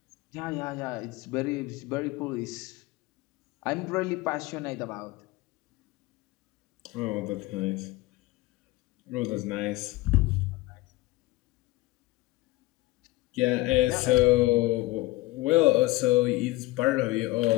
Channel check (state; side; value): quieter; right; 19.4 dB